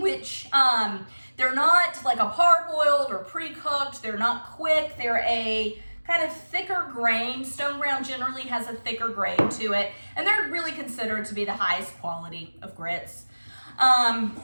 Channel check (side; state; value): both; inverted; correlation -1.00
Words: they're not like a parboiled or pre-cooked. They're not quick. They're a kind of thicker grain. Stone ground generally has a thicker grain to it, and they're really considered to be the highest quality of grits.